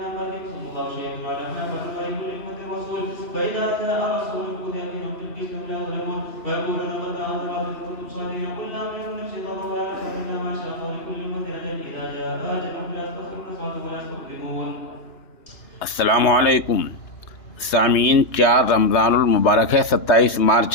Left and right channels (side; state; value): right; late; 2.9 ms